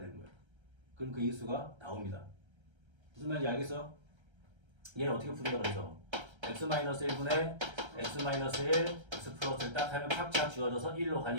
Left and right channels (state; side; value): late; left; 1.3 ms